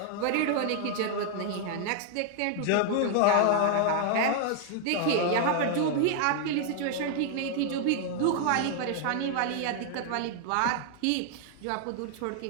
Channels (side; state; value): both; different; correlation 0.00